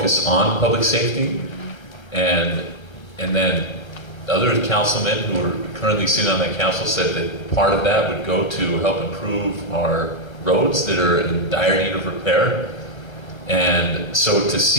on public safety, and then other councilmen who are currently sitting on that council said that part of that would go to help improve our roads that are in dire need of repair. And so to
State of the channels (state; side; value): late; right; 1.3 ms